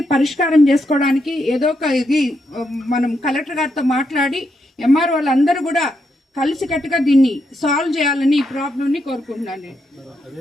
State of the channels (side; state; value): both; normal; correlation 0.81